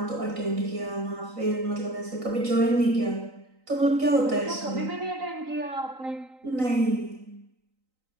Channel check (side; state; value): left; late; 3.9 ms